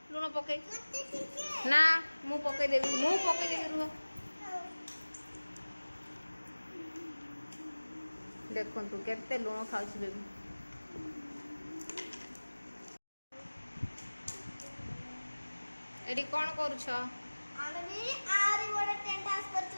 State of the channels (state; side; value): inverted; both; correlation -1.00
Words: लुण पके ना मु पके देबी रुह देखो तू केते लुण खाउछु बेबी एडी कोन करूछ आमे भी आरी बडा टेंट हाउस करछु